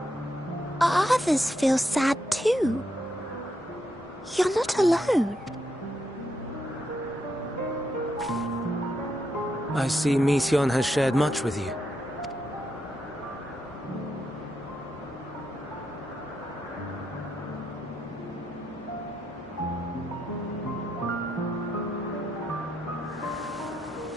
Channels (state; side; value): normal; both; correlation 0.81